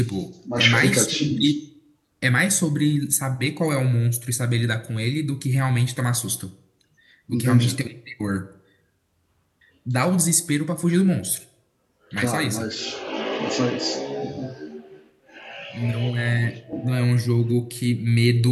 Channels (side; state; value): both; identical; correlation 1.00